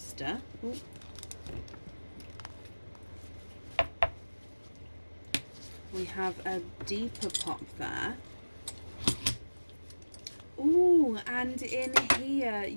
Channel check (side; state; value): both; inverted; correlation -1.00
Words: oh, we have a deeper pop there. Oh, and in here